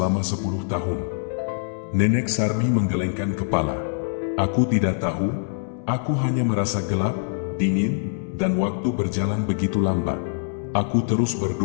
10 tahun? Nenek Sarmi menggelengkan kepala. Aku tidak tahu, aku hanya merasa gelap, dingin, dan waktu berjalan begitu lambat. Aku terus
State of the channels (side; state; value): right; silent; 63 dB below the other